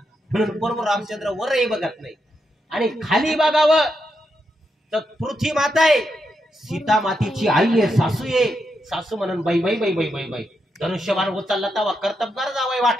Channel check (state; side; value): normal; both; correlation 0.83